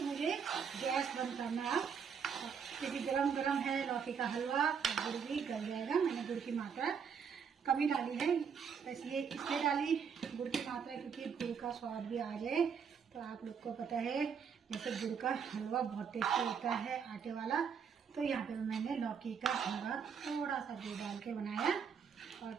मुझे गैस बंद करना क्योंकि गरम गरम है लौकी का हलवा और गुड़ भी गल जाएगा। मैंने गुड़ की मात्रा कमी डाली है, बस ये इसलिए डाली गुड़ की मात्रा क्योंकि गुड़ का स्वाद भी आ जाए। तो आप लोग को पता है जैसे गुड़ का हलवा बहुत टेस्टी होता है आटे वाला, तो यहाँ पे मैंने लौकी का हलवा थोड़ा सा गुड़ डाल के बनाया और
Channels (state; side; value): quieter; left; 6.8 dB